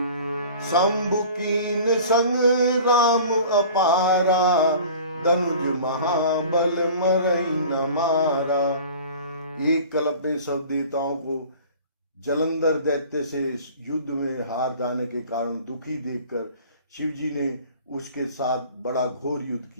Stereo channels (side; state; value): both; inverted; correlation -0.43